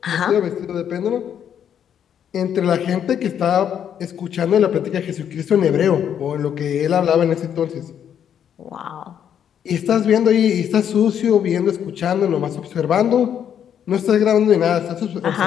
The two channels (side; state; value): right; quieter; 9.0 dB